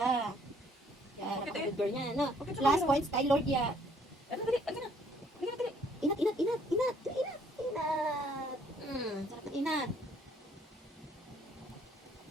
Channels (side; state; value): both; normal; correlation 0.63